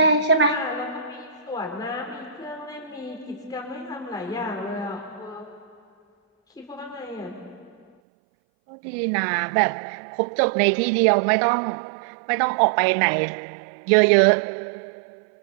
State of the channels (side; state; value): left; drops out; at 7.9 s